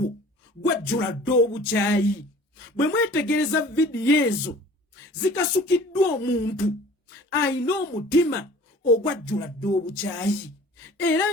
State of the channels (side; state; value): both; normal; correlation 0.47